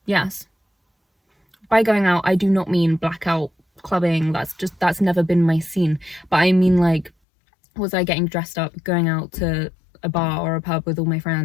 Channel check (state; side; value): drops out; right; at 7.1 s